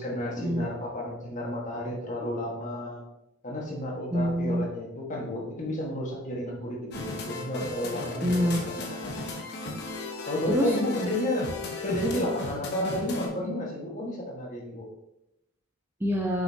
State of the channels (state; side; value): normal; both; correlation 0.50